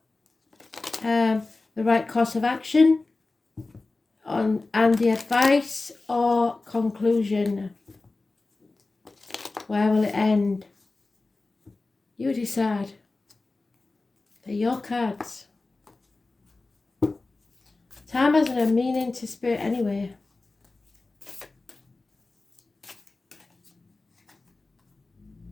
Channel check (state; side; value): quieter; right; 3.4 dB